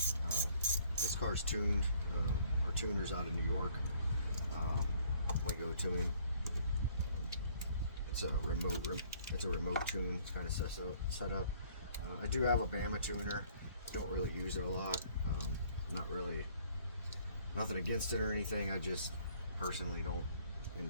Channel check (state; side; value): inverted; both; correlation -0.60